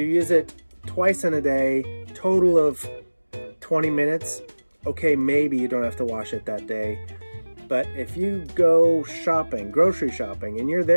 use it twice in a day, total of 20 minutes, okay, maybe you don't have to wash it that day. But if you go shopping, grocery shopping, and you're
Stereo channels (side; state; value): both; inverted; correlation -1.00